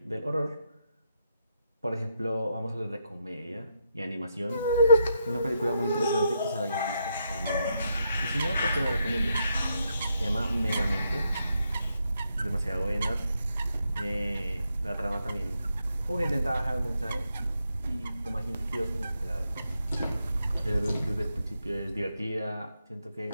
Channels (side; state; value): both; inverted; correlation -0.80